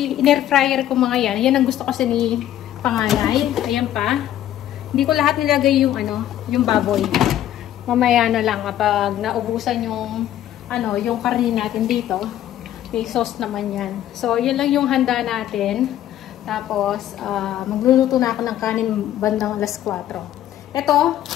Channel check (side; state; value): right; quieter; 12.2 dB